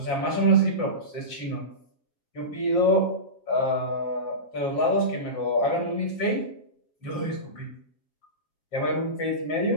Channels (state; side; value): late; right; 7.4 ms